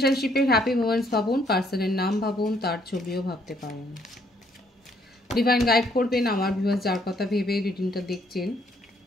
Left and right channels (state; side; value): normal; both; correlation 0.68